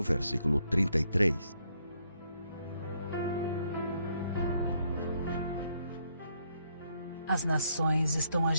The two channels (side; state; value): both; inverted; correlation -0.73